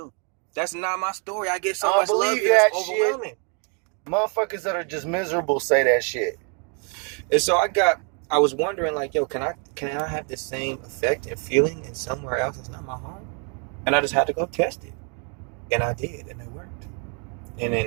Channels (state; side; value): quieter; left; 38.2 dB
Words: That's not my story. I get so much love here. It's overwhelming. Motherfuckers that are just miserable say that shit. And so I was wondering, like, can I have the same effect and feeling in somewhere else that's not my home? And I just had to go test it. And I did, and it worked. And